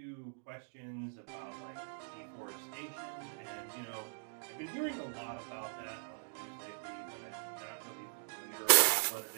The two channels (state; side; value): silent; left; digital silence